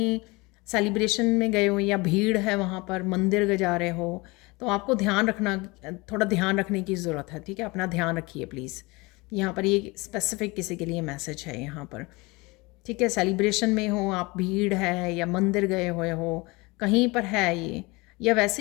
सेलिब्रेशन में गए हो या भीड़ है वहाँ पर, मंदिर जा रहे हो, तो आपको ध्यान रखना, थोड़ा ध्यान रखने की ज़रूरत है। ठीक है, अपना ध्यान रखिए प्लीज़। यहाँ पर ये स्पेसिफिक किसी के लिए मैसेज है यहाँ पर। ठीक है, सेलिब्रेशन में हो आप, भीड़ है या मंदिर गए हुए हो, कहीं पर है ये, या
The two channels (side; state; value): right; quieter; 24.5 dB